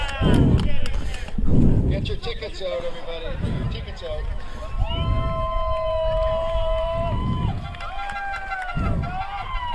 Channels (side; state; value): both; identical; correlation 1.00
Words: Get your tickets out, everybody. Tickets out.